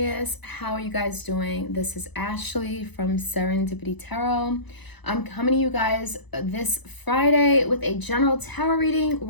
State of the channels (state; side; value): late; right; 1.0 ms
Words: How are you guys doing? This is Ashley from Serendipity Tarot. I'm coming to you guys this Friday with a general tarot reading.